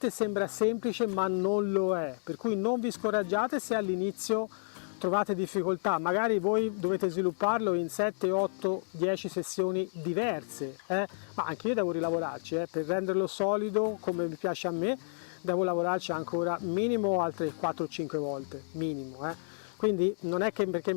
sembra semplice, ma non lo è, per cui non vi scoraggiate se all'inizio trovate difficoltà. Magari voi dovete svilupparlo in 7, 8, 10 sessioni diverse, ma anche io devo rilavorarci, per renderlo solido come mi piace a me, devo lavorarci ancora minimo altre 4-5 volte, minimo. Quindi non è che perché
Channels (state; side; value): silent; right; digital silence